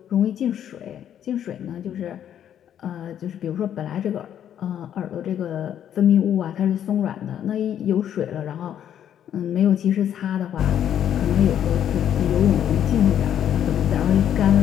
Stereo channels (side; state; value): right; quieter; 9.9 dB